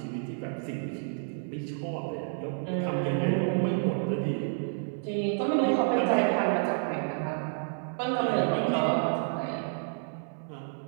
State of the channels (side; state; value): left; silent; 58 dB below the other